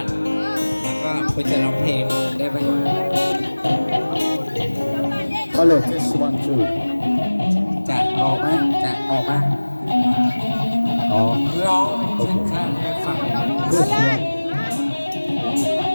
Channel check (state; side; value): inverted; both; correlation -1.00